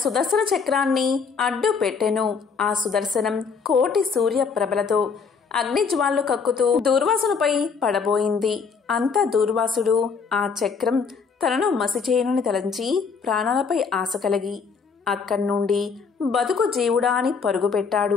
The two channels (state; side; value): quieter; right; 5.5 dB